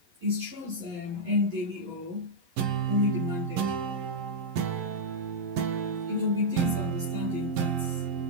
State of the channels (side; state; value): left; late; 11 ms